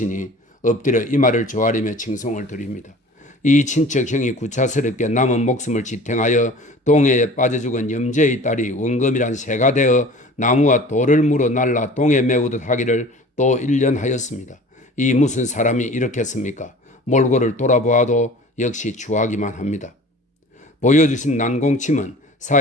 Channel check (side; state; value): both; normal; correlation 0.43